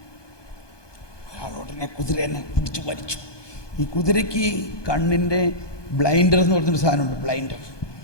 അയാൾ ഉടനെ കുതിരനെ പിടിച്ചു വലിച്ചു. ഈ കുതിരയ്ക്ക് കണ്ണിൻ്റെ ബ്ലൈൻഡർ എന്ന് പറഞ്ഞൊരു സാധനമുണ്ട്, ബ്ലൈൻഡർ.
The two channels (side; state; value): right; late; 1.2 ms